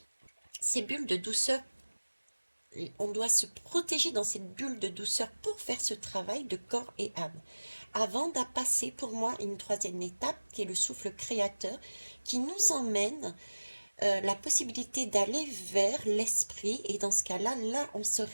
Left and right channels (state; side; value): inverted; both; correlation -1.00